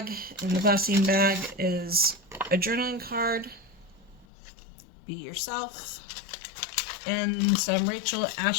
In the glassine bag is a journaling card. Be yourself. And some Rachel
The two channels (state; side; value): drops out; right; at 4.2 s